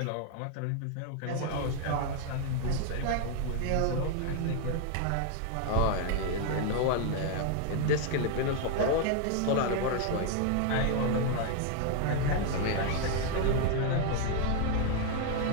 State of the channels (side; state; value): both; different; correlation 0.00